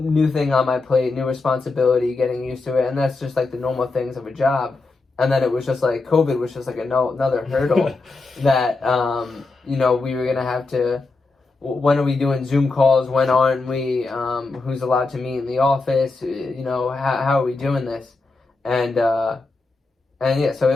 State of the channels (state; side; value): quieter; right; 3.6 dB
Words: thing on my plate, new responsibility, getting used to it. And that's just like the normal things of a job. And then it was just like COVID was just like another hurdle that, we were going to have to, when are we doing Zoom calls? When aren't we? Who's allowed to meet in the office? How are we doing this? And yeah, so